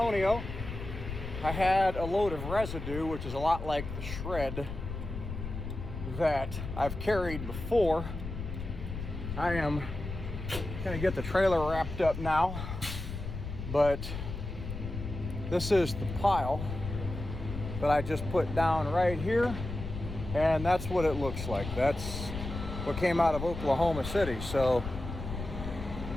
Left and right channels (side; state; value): left; noise; rumble, 7 dB below the sound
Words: I had a load of residue, which is a lot like the shred that I've carried before. I am gonna get the trailer wrapped up now, but this is the pile that I just put down right here, and that's what it looks like. That's what came out of Oklahoma City. So